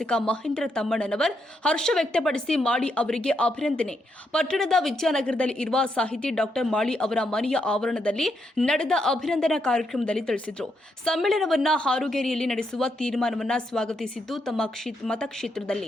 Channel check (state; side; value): normal; both; correlation 0.79